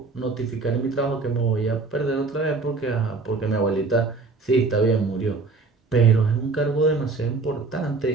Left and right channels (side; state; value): left; quieter; 4.1 dB